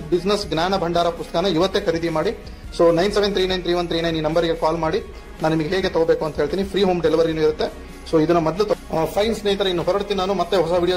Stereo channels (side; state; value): both; identical; correlation 1.00